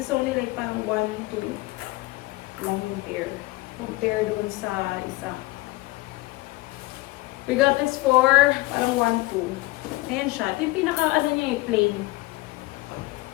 is only like parang 1, 2 lang yung pair. Compare doon sa isa. We got this for parang 1, 2. Ayan siya. Ito yung pinaka, niya plain.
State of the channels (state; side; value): quieter; right; 21.4 dB